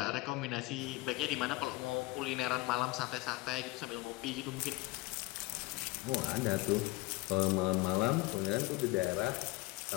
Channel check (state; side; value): quieter; right; 21.4 dB